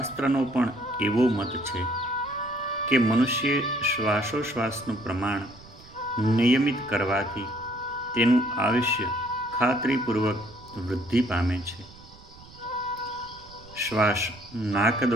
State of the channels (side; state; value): right; noise; rumble, 21 dB below the sound